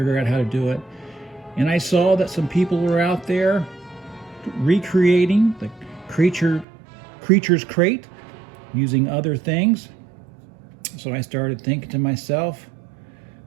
out how to do it. And I saw that some people were out there recreating the Creature's Crate using other things. So I started thinking to myself,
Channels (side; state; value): left; drops out; at 6.7 s